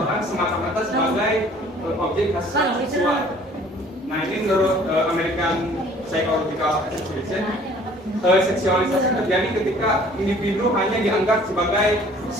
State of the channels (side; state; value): both; normal; correlation 0.53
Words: semata-mata sebagai objek seksual. Nah ini menurut American psychological association. Seksualisasi terjadi ketika individu hanya dianggap sebagai